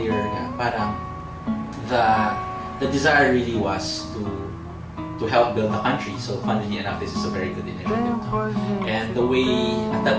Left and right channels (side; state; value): both; identical; correlation 1.00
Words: parang the desire really was to help build the country. So funnily enough, this is a very good initiative. And the way, at that